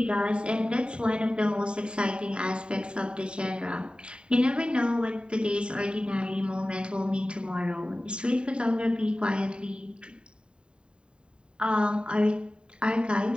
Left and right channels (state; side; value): late; left; 0.051 ms